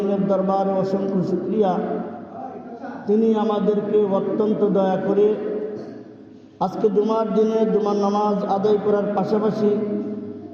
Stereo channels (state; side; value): identical; both; correlation 1.00